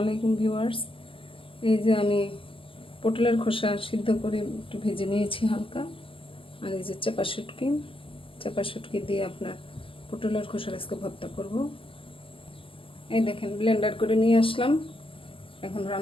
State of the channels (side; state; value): right; late; 0.26 ms